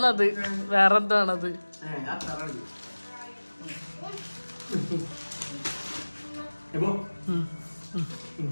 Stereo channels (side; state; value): both; inverted; correlation -1.00